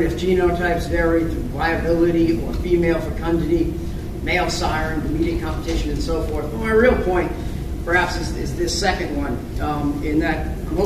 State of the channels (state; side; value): identical; both; correlation 1.00